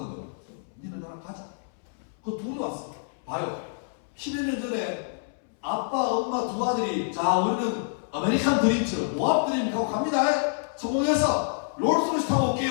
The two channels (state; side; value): silent; right; 60 dB below the other